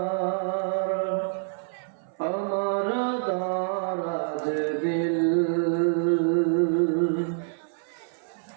আমার দারাজ দিল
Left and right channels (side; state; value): left; silent; 58 dB below the other